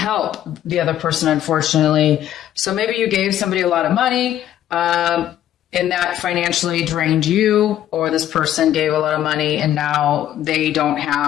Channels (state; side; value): quieter; right; 11.7 dB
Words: the other person, unfortunately. So maybe you gave somebody a lot of money, and that financially drained you, or this person gave a lot of money and now they don't